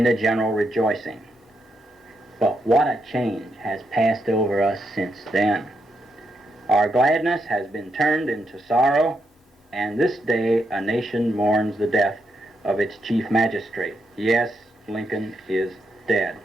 the general rejoicing. But what a change has passed over us since then. Our gladness has been turned into sorrow, and this day a nation mourns the death of its chief magistrate. Yes, Lincoln is dead.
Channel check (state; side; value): normal; both; correlation 0.81